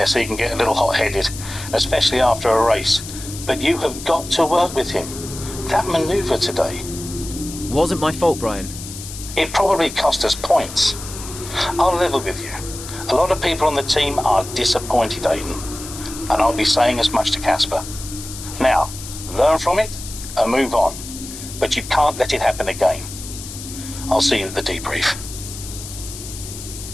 he can get a little hot-headed, especially after a race. But you have got to work with him. That manoeuvre today... Wasn't my fault, Brian. It probably cost us points. I'll level with you. A lot of people on the team are disappointed, Aiden. And I'll be saying as much to Casper. Now, learn from it and move on. But you can't let it happen again. I'll see you at the debrief.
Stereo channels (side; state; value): left; noise; hiss, 11 dB below the sound